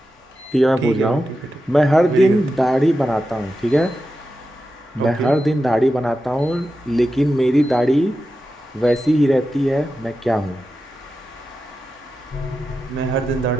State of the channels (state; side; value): normal; both; correlation 0.90